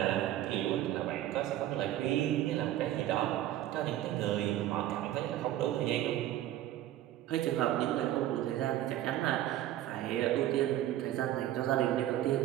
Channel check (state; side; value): quieter; left; 13.3 dB